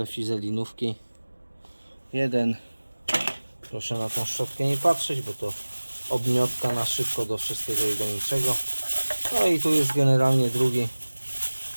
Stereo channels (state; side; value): inverted; both; correlation -1.00